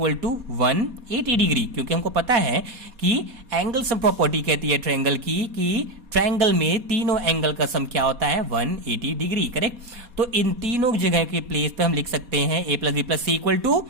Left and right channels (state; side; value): late; left; 4.2 ms